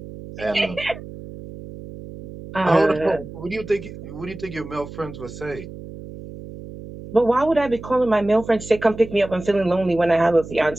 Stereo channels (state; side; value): noise; right; hum, 13 dB below the sound